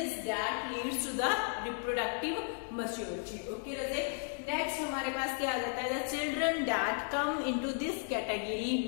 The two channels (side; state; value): right; silent; 55 dB below the other